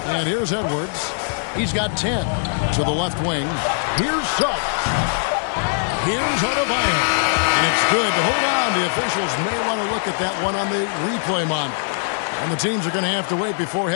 And here's Edwards. He's got 10 to the left wing. Here's Suggs. Here's Adebayo. And it's good. But hold on. The officials may want to look at that one on the replay monitor. And the teams are going to have to wait before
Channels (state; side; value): silent; right; digital silence